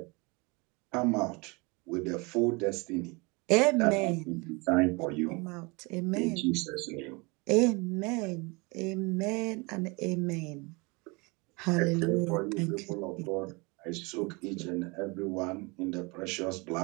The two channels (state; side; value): quieter; left; 27.8 dB